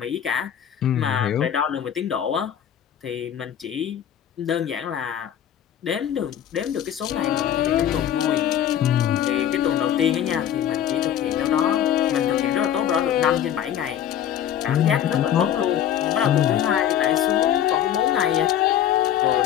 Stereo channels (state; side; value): quieter; right; 10.2 dB